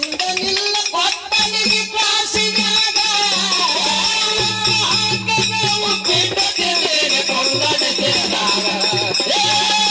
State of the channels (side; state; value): both; identical; correlation 1.00